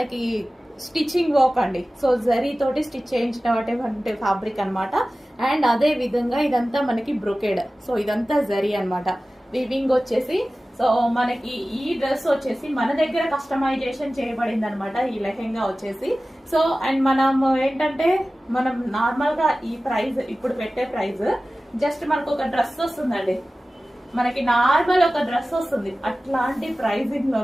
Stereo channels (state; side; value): normal; both; correlation 0.96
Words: స్టిచ్చింగ్ వర్క్ అండి. సో జరీ తోటి స్టిచ్ చేయించినటువంటి ఫ్యాబ్రిక్ అనమాట. అండ్ అదే విధంగా ఇదంతా మనకి బ్రొకెడ్. సో ఇదంతా జరీ అనమాట. వివింగ్ వచ్చేసి సో మనకి ఈ డ్రెస్ వచ్చేసి మన దగ్గర కస్టమైజేషన్ చేయబడింది అనమాట. ఈ లెహెంగా వచ్చేసి సో అండ్ మనం ఏంటంటే మనం నార్మల్ గా ఈ ప్రైస్ ఇప్పుడు పెట్టే ప్రైస్ జస్ట్ మనకు ఒక డ్రెస్ వస్తుందండి, మనకి నార్మల్ ఒక డ్రెస్ వస్తుంది. అట్లాంటి ప్రైజింగ్